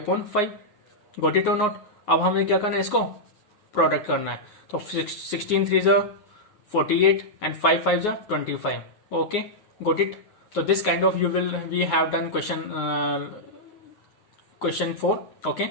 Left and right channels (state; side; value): late; right; 9.5 ms